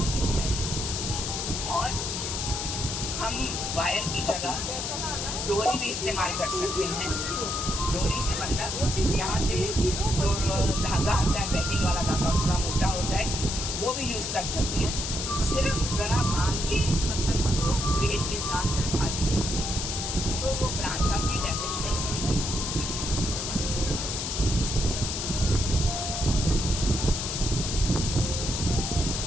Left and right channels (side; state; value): left; noise; hiss, 3 dB below the sound